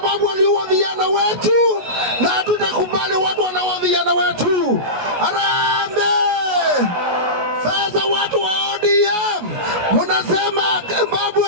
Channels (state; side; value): late; left; 17 ms